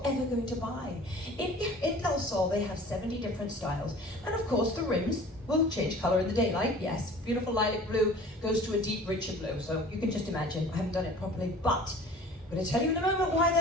ever going to buy. In Del Sol, they have 70 different styles. And of course, the rims will change color in the daylight. Yes, beautiful lilac blue goes to a deep, richer blue. So you can just imagine. I haven't done it properly, but I'm going to tell you in a moment why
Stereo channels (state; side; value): normal; both; correlation 0.45